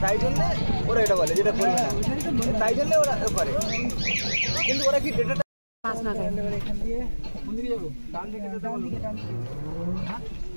তাই জন্য ওরা এটা বলে যেটা করবে না, তাই জন্য ওরা করে। কিন্তু ওরা কি ডেটাটা পাস না করে এখান দিয়ে কোন দিকে যাব? ডান দিকে যেতে বলবো।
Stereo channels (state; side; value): inverted; both; correlation -1.00